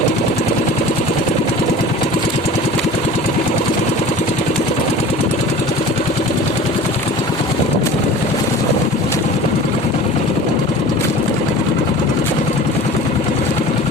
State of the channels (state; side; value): normal; both; correlation 0.41